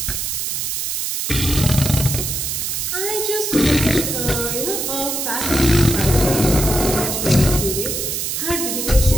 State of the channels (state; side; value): noise; right; hiss, 2 dB below the sound